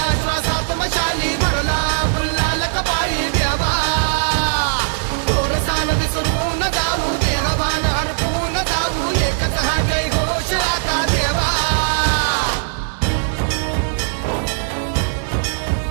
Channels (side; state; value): left; silent; digital silence